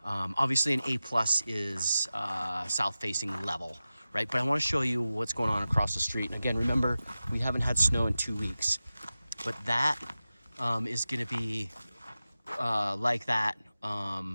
Obviously an A+ is south facing level, right? But I want to show you what's going on across the street. And again, remember, we haven't had snow in 2 weeks, but that is going to be like that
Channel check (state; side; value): inverted; both; correlation -0.95